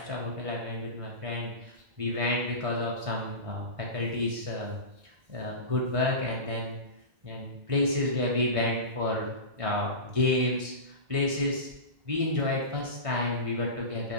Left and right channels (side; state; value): left; late; 1.6 ms